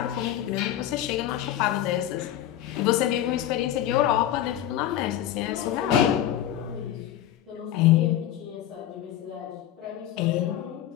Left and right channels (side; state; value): right; quieter; 11.8 dB